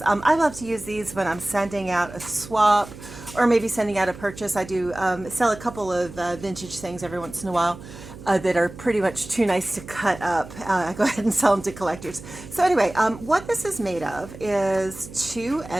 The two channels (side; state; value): right; noise; hum, 15 dB below the sound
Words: I love to use these when I'm sending out a swap or maybe sending out a purchase. I do sell a couple of vintage things every once in a while. That are pretty much too nice to cut up. I go ahead and sell them to collectors. So anyway, what this is made of is 2